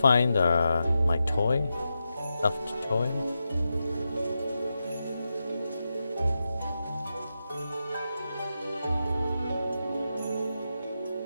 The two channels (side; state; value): both; inverted; correlation -0.89